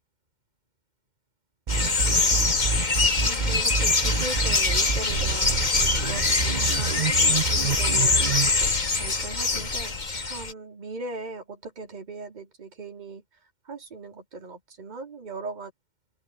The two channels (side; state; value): left; late; 2.1 ms